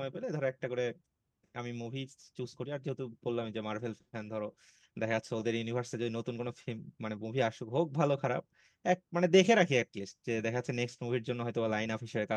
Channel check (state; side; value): identical; both; correlation 1.00